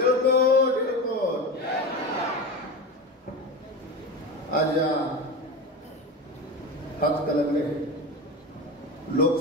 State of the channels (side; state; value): both; normal; correlation 0.24